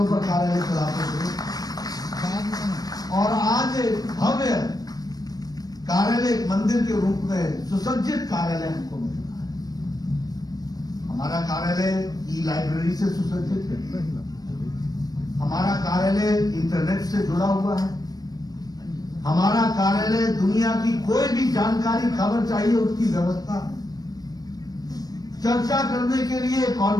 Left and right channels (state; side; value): late; right; 0.19 ms